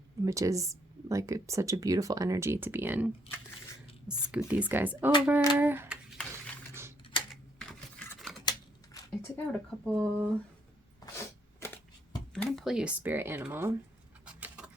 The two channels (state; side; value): normal; both; correlation 0.71